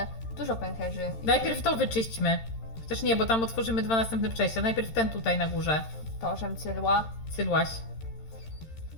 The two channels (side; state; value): right; late; 13 ms